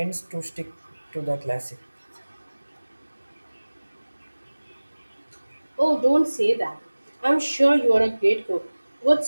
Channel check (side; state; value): both; inverted; correlation -1.00